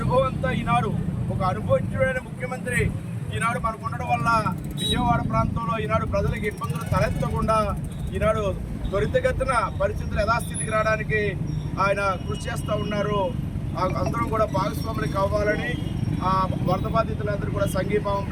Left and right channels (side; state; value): both; identical; correlation 1.00